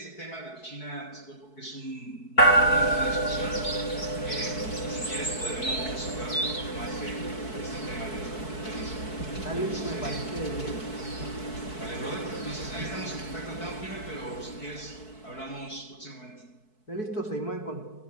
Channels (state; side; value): late; right; 4.6 ms